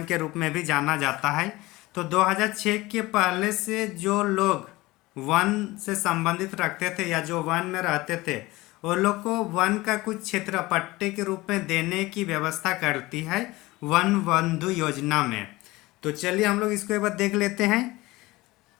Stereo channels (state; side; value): quieter; right; 20.2 dB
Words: के रूप में भी जाना जाता है। तो 2006 के पहले से जो लोग वन से संबंधित रखते थे या जो वन में रहते थे, वो लोग को वन का कुछ क्षेत्र पट्टे के रूप में देने की व्यवस्था करती है वन बंधु योजना में। तो चलिए हम लोग इसको एक बार देख लेते हैं।